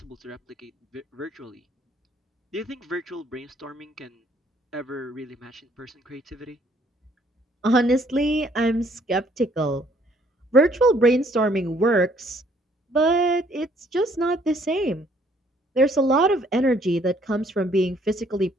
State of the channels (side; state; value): both; normal; correlation 0.64